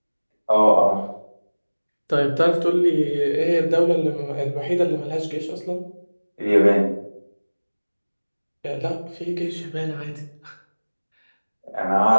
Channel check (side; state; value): both; inverted; correlation -1.00